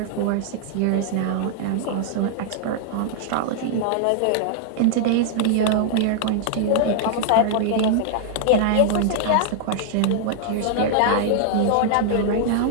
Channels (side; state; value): both; different; correlation -0.01